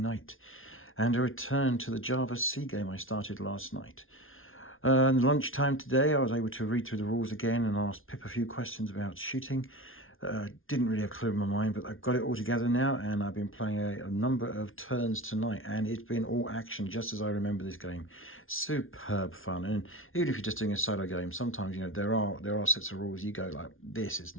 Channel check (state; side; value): late; right; 0.59 ms